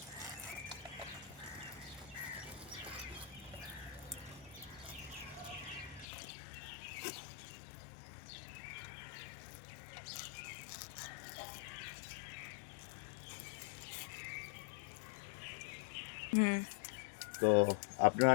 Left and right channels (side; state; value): right; drops out; at 6.1 s